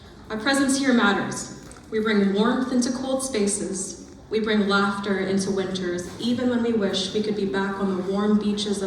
Our presence here matters. We bring warmth into cold spaces. We bring laughter into winters, even when we wish we could be back on the warm beaches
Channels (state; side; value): identical; both; correlation 1.00